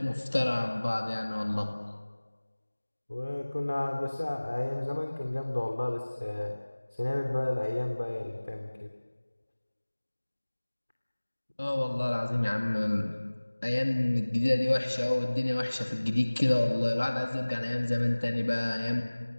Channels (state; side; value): inverted; both; correlation -1.00